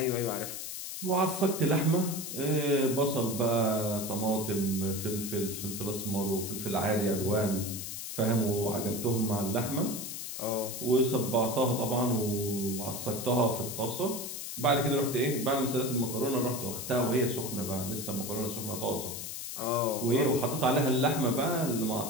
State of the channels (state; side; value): noise; left; hiss, 7 dB below the sound